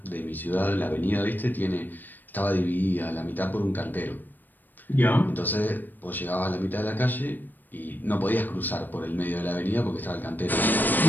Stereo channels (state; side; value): late; right; 0.089 ms